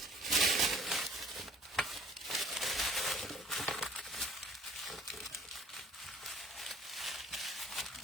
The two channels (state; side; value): normal; both; correlation 0.54